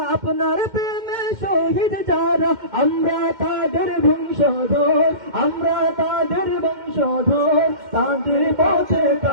আপনার প্রেমে শহীদ যারা, আমরা তাদের বংশধর, আমরা তাদের বংশধর, তাদের পথে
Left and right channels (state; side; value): late; left; 2.1 ms